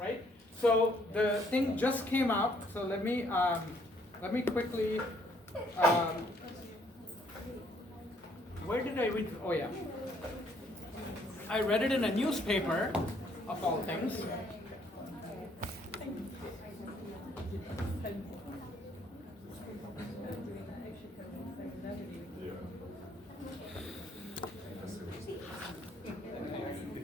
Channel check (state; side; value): normal; both; correlation 0.66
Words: So the thing just came out, so let me quickly, where did I read? Oh yeah. I read it in a newspaper, of all things.